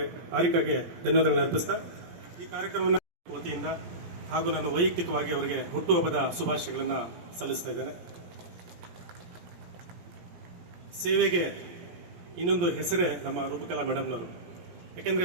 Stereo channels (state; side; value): late; left; 17 ms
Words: ಹಾರಿಕಾಗೆ ಧನ್ಯವಾದಗಳನ್ನು ಅರ್ಪಿಸ್ತಾ ಈ ಕಾರ್ಯಕ್ರಮವನ್ನು ವತಿಯಿಂದ ಹಾಗೂ ನಾನು ವೈಯಕ್ತಿಕವಾಗಿ ಅವರಿಗೆ ಹುಟ್ಟುಹಬ್ಬದ ಶುಭಾಶಯಗಳನ್ನು ಸಲ್ಲಿಸ್ತಾ ಇದ್ದೇನೆ. ಸೇವೆಗೆ ಇನ್ನೊಂದು ಹೆಸರೇ ನಮ್ಮ ರೂಪಕಲಾ ಮೇಡಮ್ನವರು.